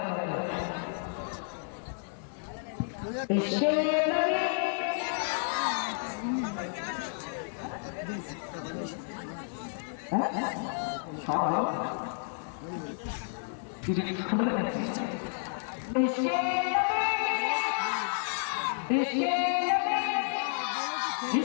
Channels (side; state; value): right; silent; digital silence